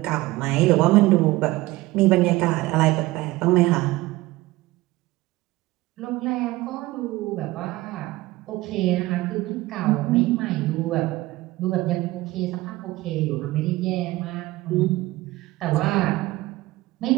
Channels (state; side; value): quieter; left; 19.0 dB